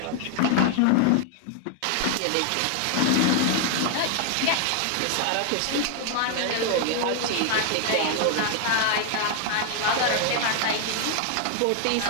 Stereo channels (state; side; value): different; both; correlation 0.00